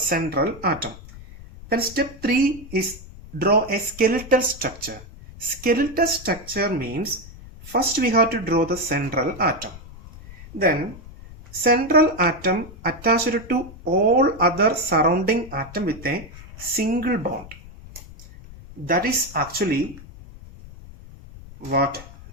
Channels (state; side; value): noise; left; rumble, 17 dB below the sound